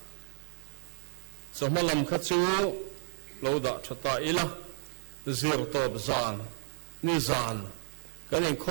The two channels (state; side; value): silent; left; digital silence